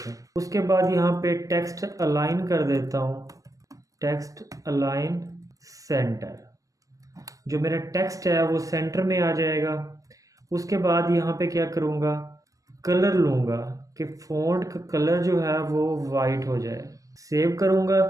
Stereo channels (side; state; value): left; late; 0.16 ms